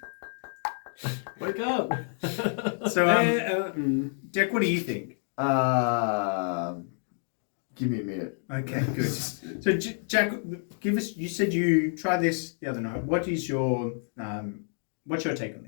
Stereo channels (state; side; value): silent; right; 59 dB below the other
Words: Wake up! So, Mm. Jack, what do you think? Give me a minute. Okay, good. So, Jack, give us. You said you tried this the other night. What is your what's your take on